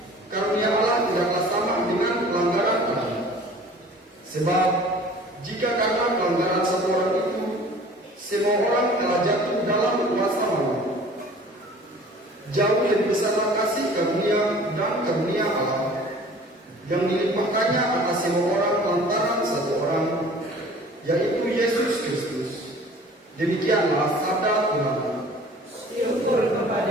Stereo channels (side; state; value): both; normal; correlation 0.47